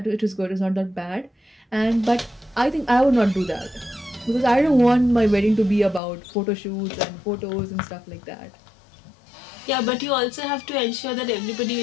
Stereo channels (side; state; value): right; drops out; at 6.0 s